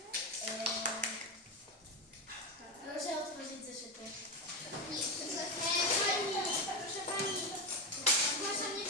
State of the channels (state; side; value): normal; both; correlation 0.13